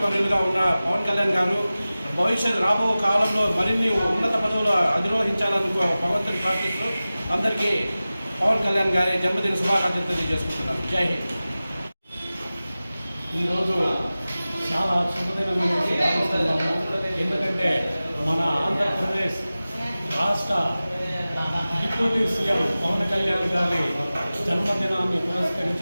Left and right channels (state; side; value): inverted; both; correlation -0.97